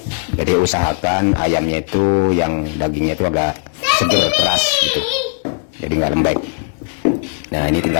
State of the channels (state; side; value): silent; right; digital silence